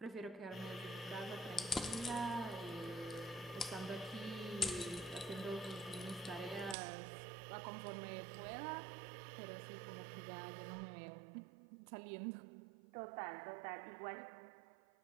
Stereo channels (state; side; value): drops out; left; at 6.8 s